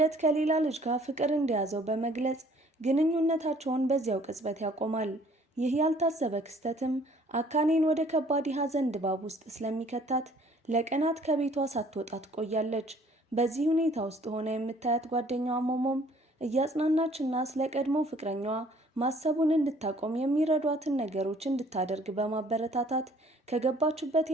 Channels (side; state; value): both; normal; correlation 0.58